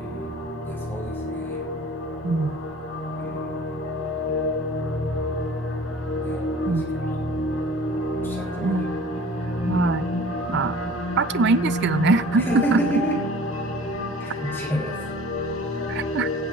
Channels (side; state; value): both; normal; correlation 0.46